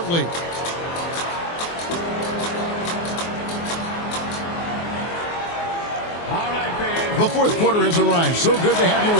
The fourth quarter has arrived. So good to have you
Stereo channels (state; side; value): late; right; 24 ms